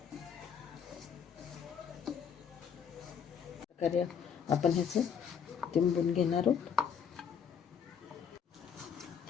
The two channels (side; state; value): right; quieter; 7.5 dB